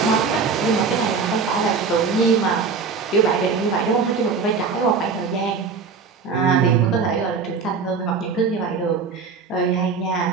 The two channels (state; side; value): quieter; left; 5.2 dB